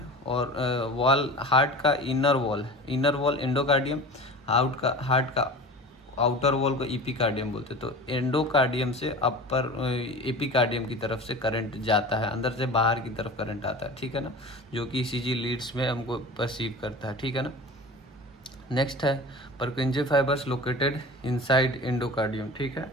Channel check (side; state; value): both; normal; correlation 0.35